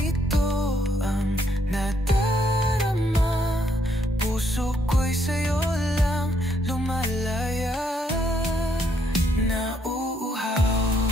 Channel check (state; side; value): normal; both; correlation 0.72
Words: ang nadarama? Puso ko'y sa'yo lang lumalaya. Nauuhaw